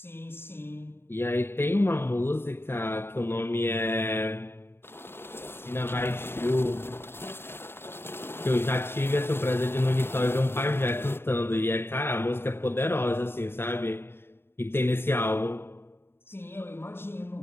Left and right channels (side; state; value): right; late; 0.11 ms